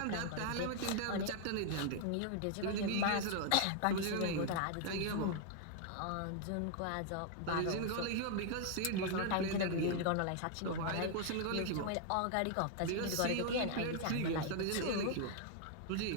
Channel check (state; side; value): different; both; correlation 0.00